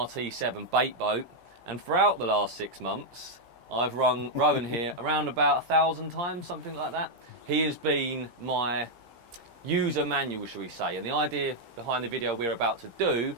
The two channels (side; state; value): left; late; 16 ms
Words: Baitboat, and throughout the last 6 months, I've rung Rowan here around about 1,000 times, something like that. He has been my user manual, shall we say, and the idea behind the video we're about to do